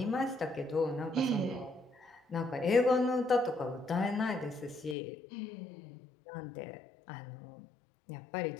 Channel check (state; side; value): drops out; right; at 5.0 s